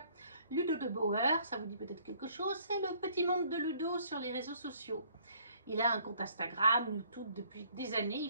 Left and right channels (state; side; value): inverted; both; correlation -0.60